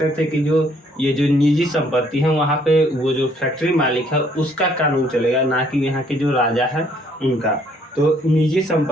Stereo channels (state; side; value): normal; both; correlation 0.65